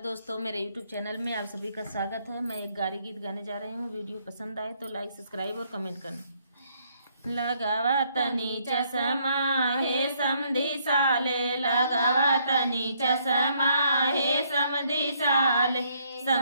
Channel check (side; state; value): both; inverted; correlation -0.70